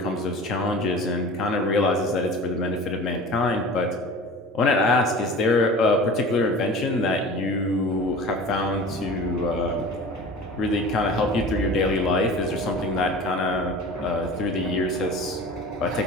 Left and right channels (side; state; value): both; normal; correlation 0.38